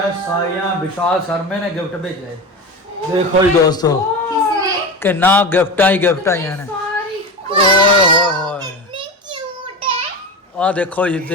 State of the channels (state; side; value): normal; both; correlation 0.25